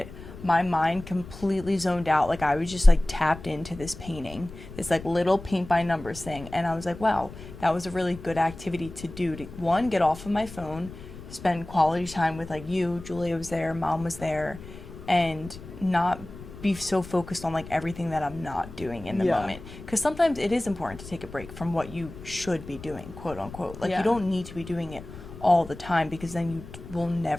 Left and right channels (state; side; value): noise; left; rumble, 15 dB below the sound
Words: my mind completely zoned out. Like I was just like tapped into this painting, this like little paint by numbers thing, and I was like, wow, that was a really good activity to do, to one, get off of my phone, spend quality time with like you, Julia was there, mom was there, and not be so focused on like everything that I'm not doing in the moment. Because sometimes it is important to take a break from what you should be doing, quote unquote. Like you don't need to be doing it all the time, because then you will